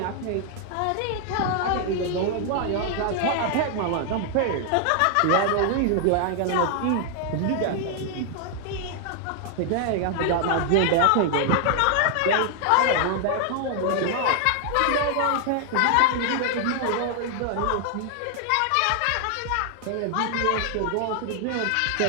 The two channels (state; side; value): different; both; correlation 0.00